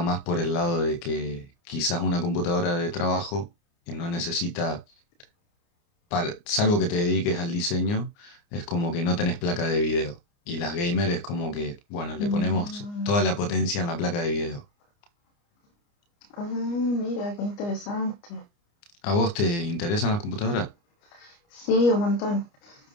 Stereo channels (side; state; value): right; late; 29 ms